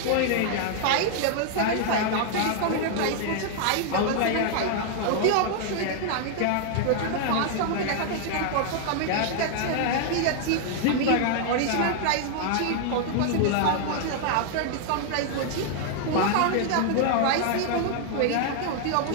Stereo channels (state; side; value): different; both; correlation 0.00